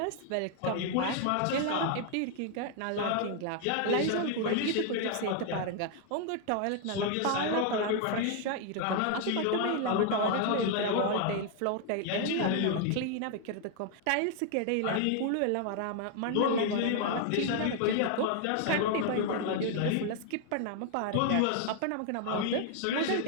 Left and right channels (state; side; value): different; both; correlation 0.00